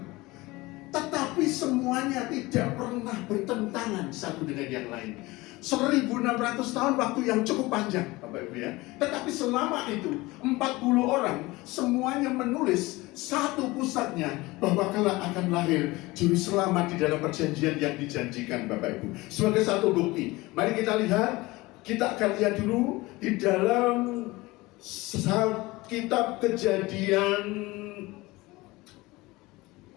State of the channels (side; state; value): right; quieter; 21.1 dB